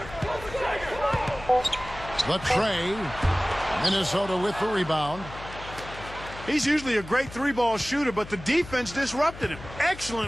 The tray. Minnesota with the rebound. He's usually a great three-ball shooter, but the defense disrupted him.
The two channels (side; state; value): left; noise; hum, 14 dB below the sound